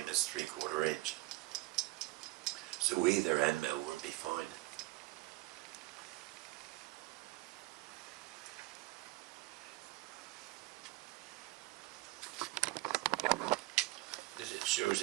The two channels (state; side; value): quieter; left; 21.3 dB